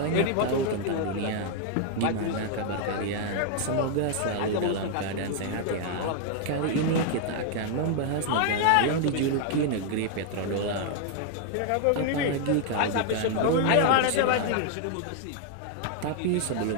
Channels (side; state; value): both; different; correlation 0.00